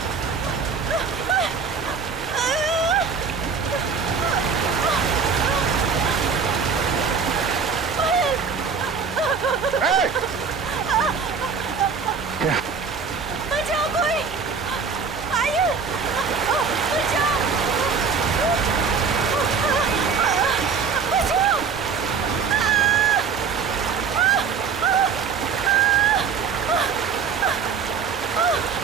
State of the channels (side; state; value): left; quieter; 5.8 dB